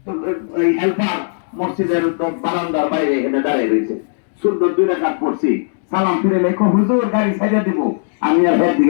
তো এই হেল্পার মসজিদের বারান্দার বাইরে এখানে দাঁড়িয়ে রয়েছে, সুন্দর 2 রাকাত পড়ছি, সালাম ফিরে লেখো হুজুর গাড়ি ছেড়ে দিব, আমি আর এর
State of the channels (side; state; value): right; silent; digital silence